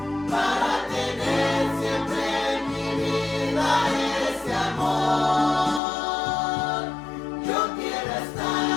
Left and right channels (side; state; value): right; drops out; at 5.8 s